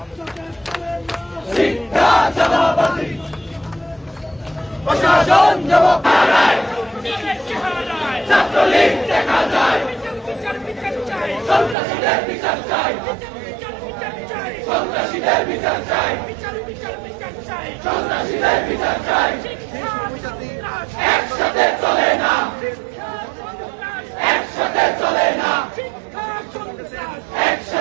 শিক্ষা চাঁদাবাজি প্রশাসন জবাব হারায় ছাত্রলীগ দেখা যায় সন্ত্রাসীদের বিচার চাই সন্ত্রাসীদের বিচার চাই সন্ত্রাসীদের বিচার চাই একসাথে চলে না একসাথে চলে না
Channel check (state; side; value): drops out; left; at 11.8 s